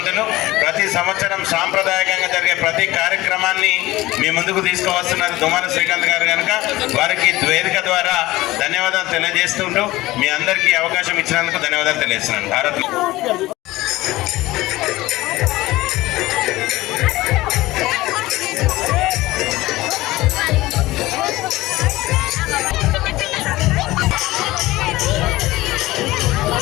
ప్రతి సంవత్సరం సాంప్రదాయకంగా జరిగే ప్రతి కార్యక్రమాన్ని మీ ముందుకు తీసుకువస్తున్నారు తుమ్మాల శ్రీకాంత్ గారు. కనుక వారికి వేదిక ద్వారా ధన్యవాదాలు తెలియజేస్తుంటూ మీ అందరికీ అవకాశం ఇచ్చినందుకు ధన్యవాదాలు తెలియజేస్తున్నాను. భారత్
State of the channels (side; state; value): right; quieter; 18.3 dB